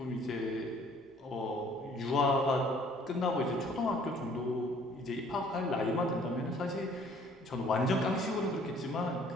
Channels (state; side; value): normal; both; correlation 0.57